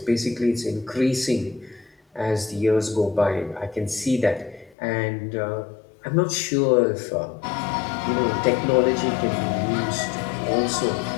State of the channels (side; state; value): right; drops out; at 4.8 s